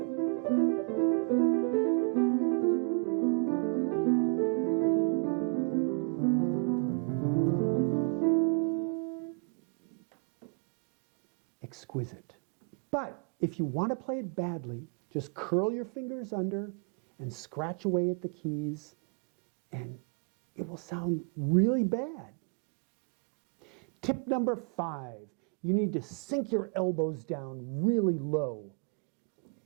Exquisite. But if you want to play it badly, just curl your fingers under and scratch away at the keys, and it will sound really bad. Tip number 5, you need to sink your elbows down really low.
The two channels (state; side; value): quieter; left; 39.1 dB